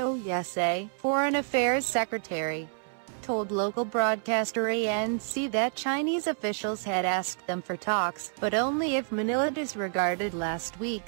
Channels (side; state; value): left; silent; 59 dB below the other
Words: Yasay, Foreign Affairs Secretary, told local broadcaster ANC that Chinese officials had asked them for talks, but only if Manila disregarded last